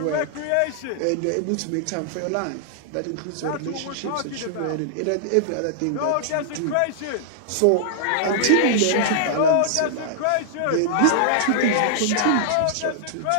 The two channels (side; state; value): both; different; correlation -0.01